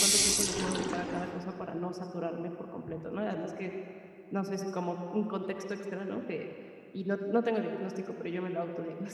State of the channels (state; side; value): identical; both; correlation 1.00